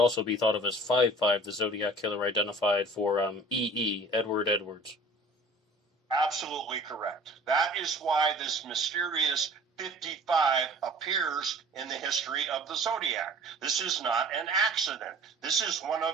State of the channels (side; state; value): both; normal; correlation 0.46